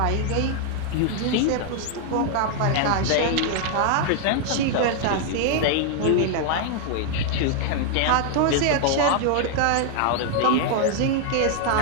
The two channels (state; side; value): different; both; correlation 0.00